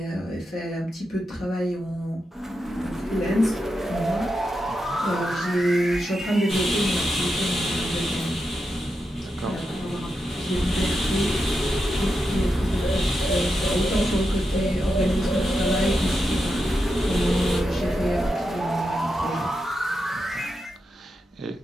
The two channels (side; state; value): both; normal; correlation 0.87